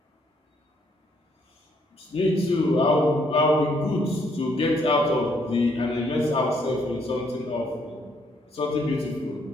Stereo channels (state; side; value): normal; both; correlation 0.70